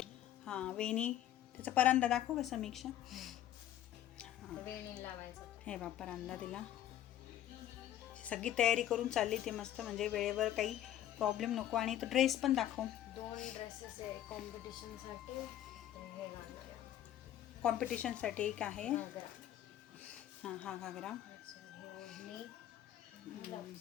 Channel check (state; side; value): quieter; right; 12.1 dB